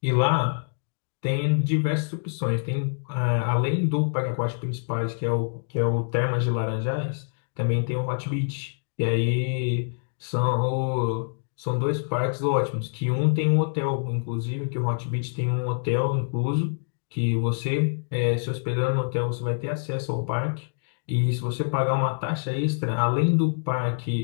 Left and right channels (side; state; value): right; silent; digital silence